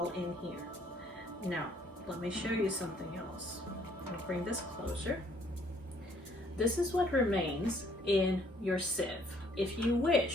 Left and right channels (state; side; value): normal; both; correlation 0.63